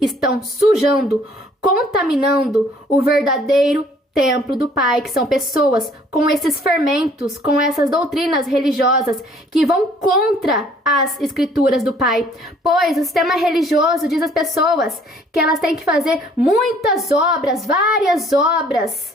estão sujando, contaminando o verdadeiro templo do Pai, que são pessoas com esses fermentos, com essas doutrinas religiosas que vão contra as escrituras do Pai. Pois o sistema religioso diz às pessoas que elas têm que fazer muitas obras, várias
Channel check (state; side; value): normal; both; correlation 0.59